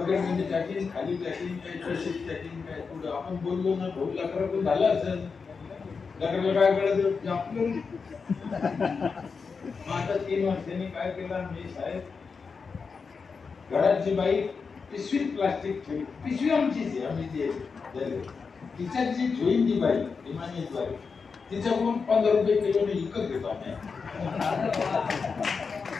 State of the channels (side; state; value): right; quieter; 5.2 dB